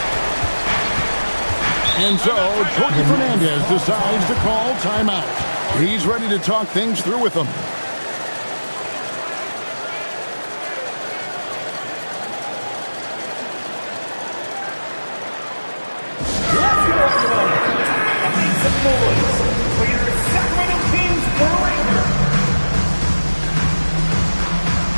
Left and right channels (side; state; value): both; inverted; correlation -1.00